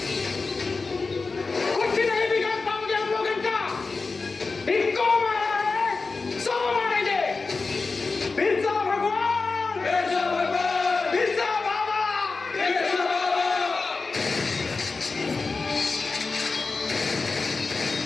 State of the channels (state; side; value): quieter; right; 4.1 dB